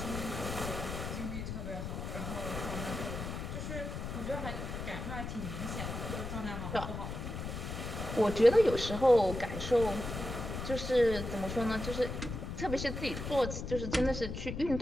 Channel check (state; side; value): noise; left; rumble, 5 dB below the sound